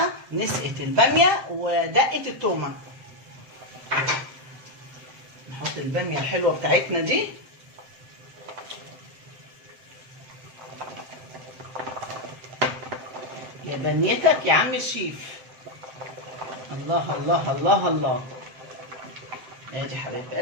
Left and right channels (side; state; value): left; late; 7.7 ms